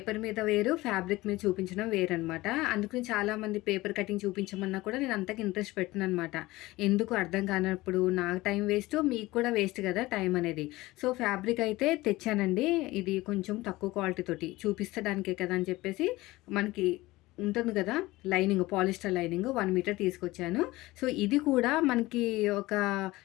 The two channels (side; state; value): right; quieter; 19.3 dB